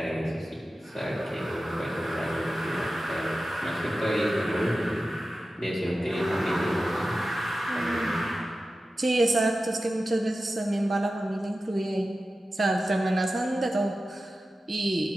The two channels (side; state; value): both; normal; correlation 0.94